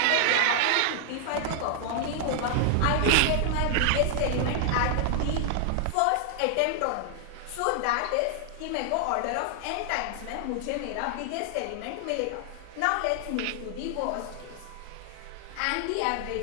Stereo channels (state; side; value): different; both; correlation 0.00